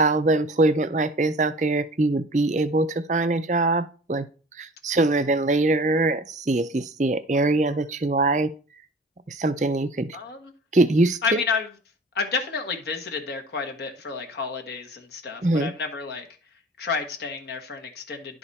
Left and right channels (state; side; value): normal; both; correlation 0.44